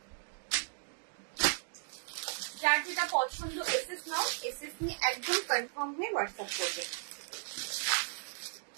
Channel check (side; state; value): left; silent; digital silence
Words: যার যেটা পছন্দ এসএস নাও, এসএস নিয়ে একদম কনফার্ম হয়ে হোয়াটসঅ্যাপ করবে।